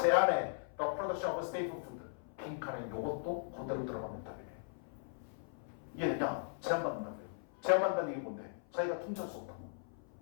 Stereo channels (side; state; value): right; silent; 52 dB below the other